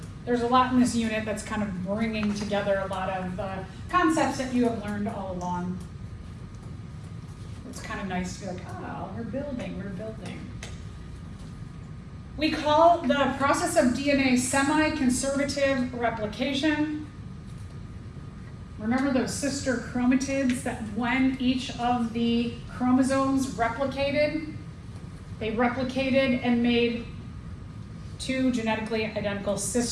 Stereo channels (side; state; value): both; identical; correlation 1.00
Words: There's a lot in this unit that's kind of bringing together a lot of concepts that you have learned all along. It's kind of nice to be like, oh, we're building. We call the process of DNA semi-conservative replication. Remember those sister chromatids that when each of the chromosomes replicated, they replicated and made 2 genetically identical